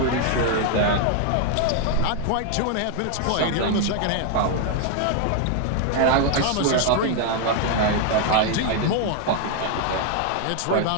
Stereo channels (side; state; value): both; different; correlation 0.00